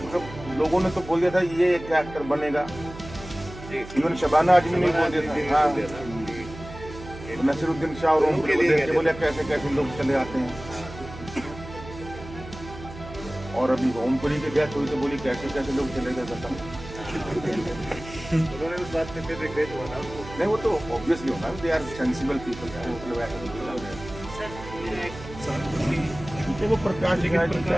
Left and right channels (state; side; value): noise; right; hum, 14 dB below the sound